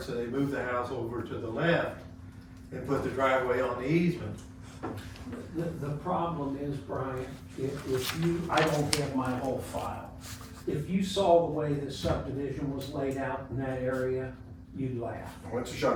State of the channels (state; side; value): identical; both; correlation 1.00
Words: so they moved the house over to the left and put the driveway on the easement. The problem is, Brian, if you, I don't have my whole file. If you saw the way the subdivision was laid out in that area, you'd laugh. Well, it's a